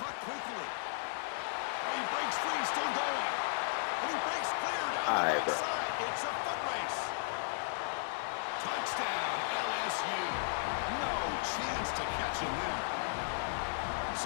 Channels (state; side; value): silent; right; digital silence